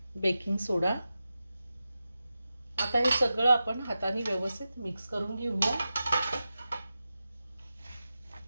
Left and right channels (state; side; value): inverted; both; correlation -0.92